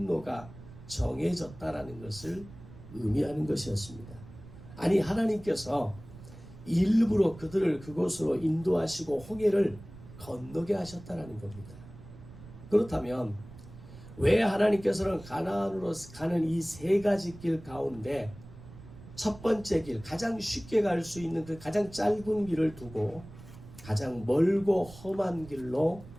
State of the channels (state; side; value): noise; right; rumble, 17 dB below the sound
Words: 정해졌다라는 것을 의미하는 것이었습니다. 아니, 하나님께서 일부러 그들을 그곳으로 인도하시고 홍해를 건너게 하셨다는 겁니다. 그렇다면 왜 하나님께서는 가나안으로 가는 이 세 가지 길 가운데 첫 번째 길, 가장 쉽게 갈 수 있는 그 가장 짧은 길을 두고 가장 멀고 험한 길로